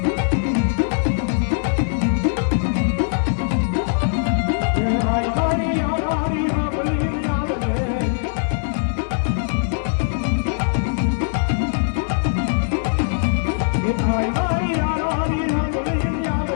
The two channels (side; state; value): right; silent; digital silence